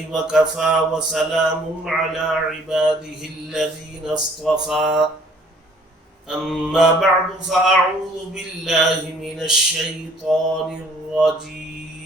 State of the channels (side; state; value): both; normal; correlation 0.58